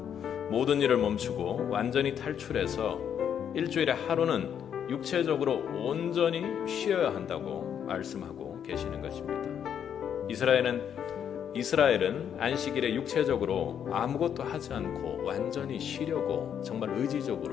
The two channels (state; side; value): quieter; right; 8.6 dB